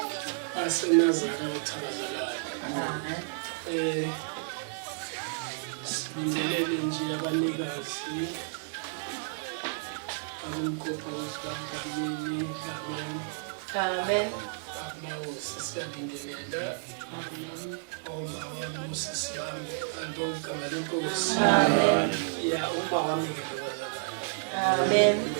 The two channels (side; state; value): left; silent; 57 dB below the other